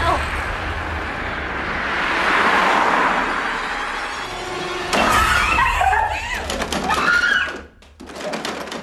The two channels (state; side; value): identical; both; correlation 1.00